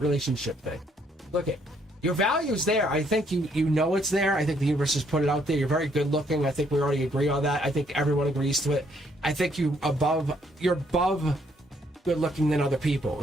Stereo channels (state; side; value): normal; both; correlation 0.69